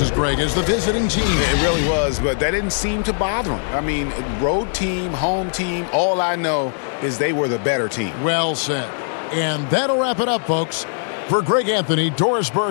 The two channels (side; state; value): right; silent; digital silence